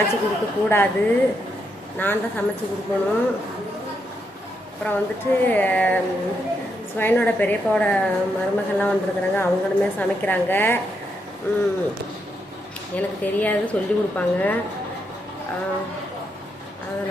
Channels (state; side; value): normal; both; correlation 0.80